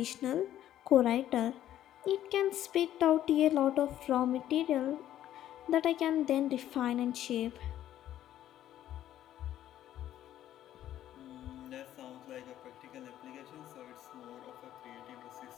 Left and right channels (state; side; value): quieter; right; 12.1 dB